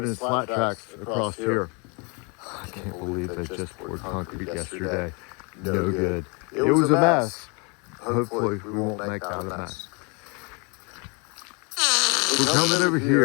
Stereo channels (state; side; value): quieter; right; 32.3 dB